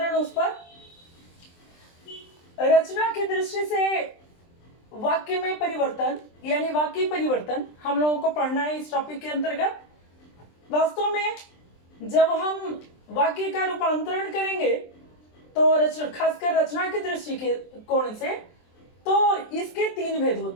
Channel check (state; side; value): late; right; 23 ms